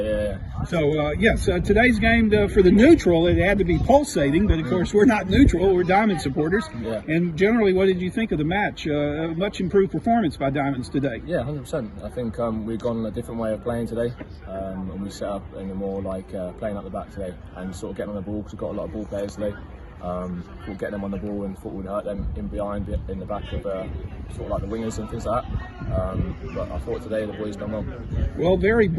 So yes, today's game for the neutral, it had to be pulsating, but of course we're not neutral, we're Diamond supporters. Yeah. And generally, what did you think of the match? A much improved performance by Diamonds today. Yeah, 100%. I think we've gone a different way of playing today, and we set up in a more playing up the back today and sort of getting on the ball, because we've got a lot of ball players today. We'll get them on the ball and thought we'd hurt them in the back of sort of like the wingers and things like that. But I thought today the boys done well. Well, very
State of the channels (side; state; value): both; identical; correlation 1.00